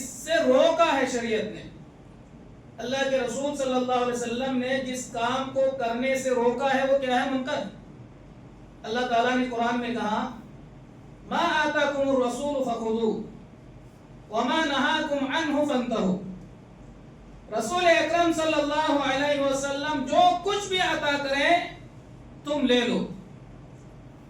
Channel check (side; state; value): both; identical; correlation 1.00